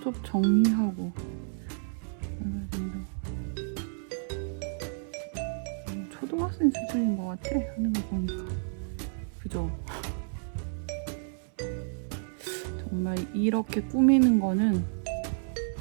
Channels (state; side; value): silent; left; 57 dB below the other